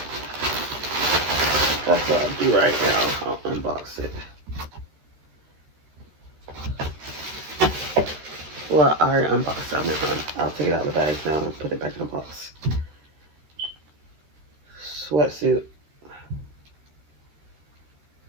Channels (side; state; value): left; late; 13 ms